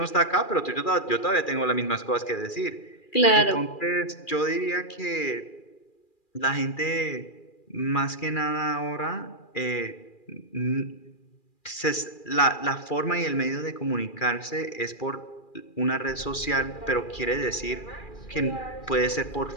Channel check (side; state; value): right; late; 2.4 ms